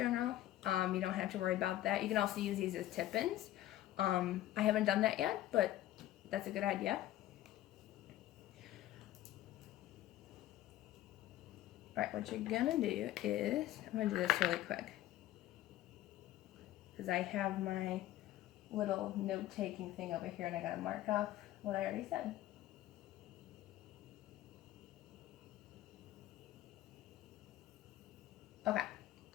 you don't have to worry about that. You can also use these as tip-ins. I haven't done that yet, but that's a good idea. Alright, what you're gonna do is, I'm gonna do this really quick, because I have my little note-taking thing over here and I gotta mark off what I already said. Okay,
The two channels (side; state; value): right; quieter; 14.2 dB